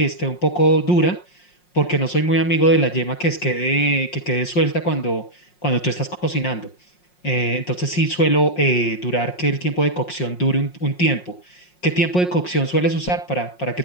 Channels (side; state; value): right; late; 5.5 ms